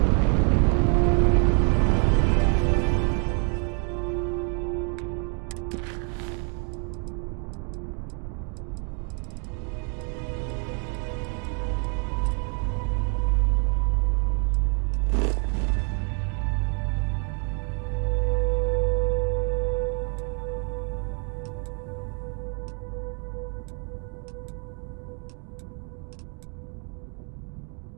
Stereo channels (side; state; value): left; quieter; 39.7 dB